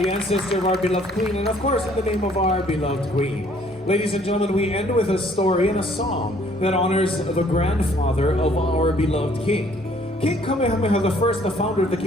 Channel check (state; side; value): normal; both; correlation 0.60